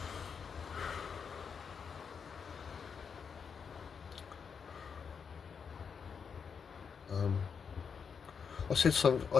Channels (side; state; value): right; quieter; 6.4 dB